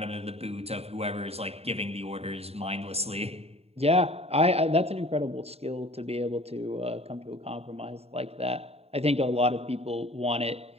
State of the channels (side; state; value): left; late; 0.29 ms